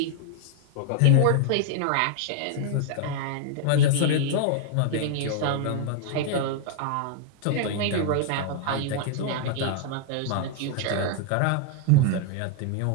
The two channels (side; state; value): both; different; correlation 0.00